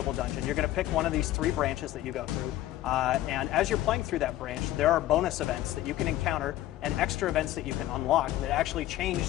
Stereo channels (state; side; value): quieter; right; 14.6 dB